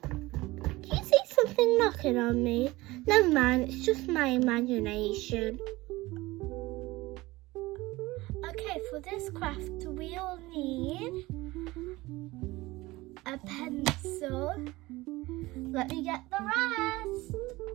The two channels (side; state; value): left; quieter; 20.1 dB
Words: Do you see something knocking on me? Never mind, it's just my imagination. Okay, for this craft we'll need a pencil. Let me get the rest.